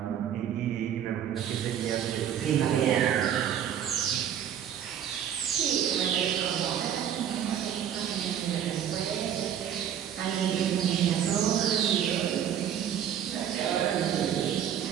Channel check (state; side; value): quieter; left; 9.6 dB